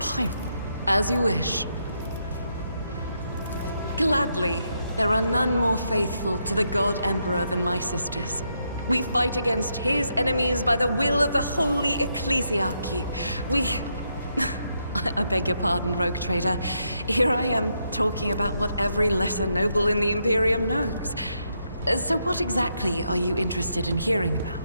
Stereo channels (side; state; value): both; inverted; correlation -0.80